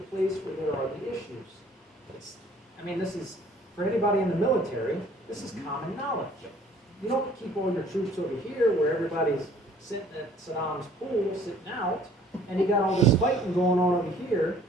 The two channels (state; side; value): normal; both; correlation 0.56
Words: place where there are the issues. This is, for anybody in the military, this is common knowledge. You don't keep all your troops over here where everybody's sitting at Saddam's pool, sitting out, and you got all this fighting going on over here,